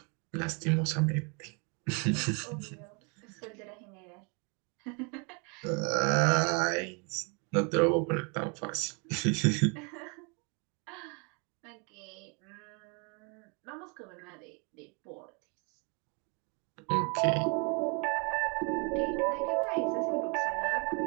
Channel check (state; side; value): quieter; left; 34.1 dB